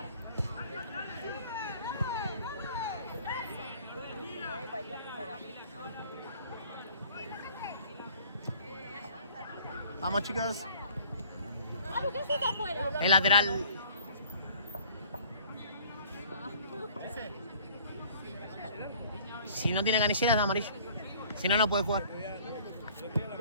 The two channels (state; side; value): inverted; both; correlation -0.53